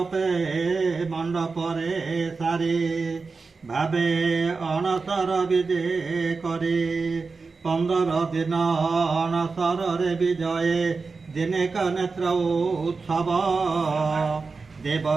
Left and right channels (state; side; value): quieter; left; 4.4 dB